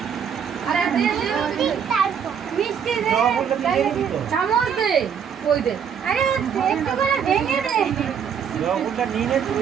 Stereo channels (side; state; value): left; quieter; 7.6 dB